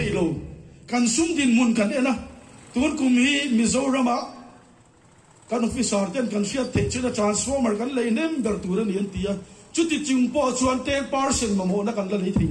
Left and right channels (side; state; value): both; identical; correlation 1.00